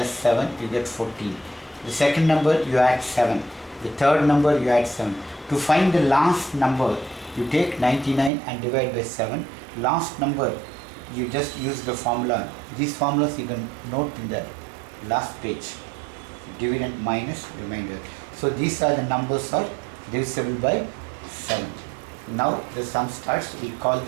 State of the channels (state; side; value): drops out; left; at 8.3 s